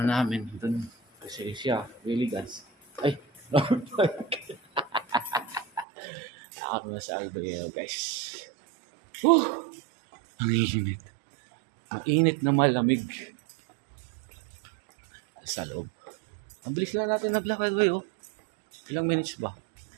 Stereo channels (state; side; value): drops out; left; at 5.9 s